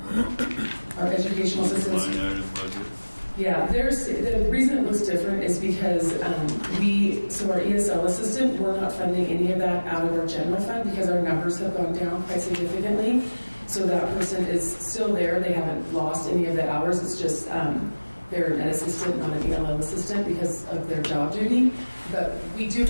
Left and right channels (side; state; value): both; inverted; correlation -1.00